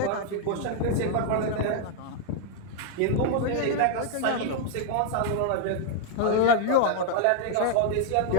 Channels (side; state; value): both; different; correlation 0.00